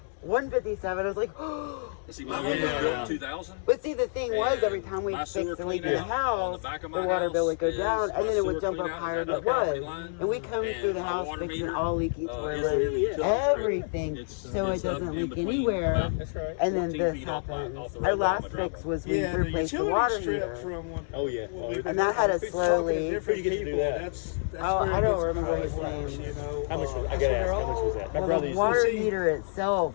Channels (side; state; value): right; silent; digital silence